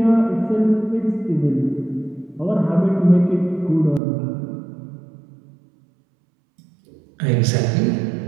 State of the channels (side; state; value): left; drops out; at 4.0 s